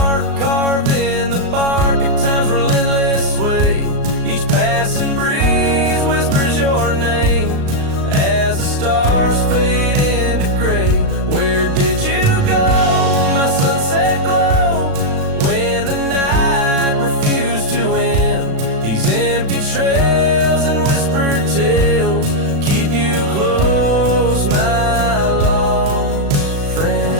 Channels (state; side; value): late; left; 36 ms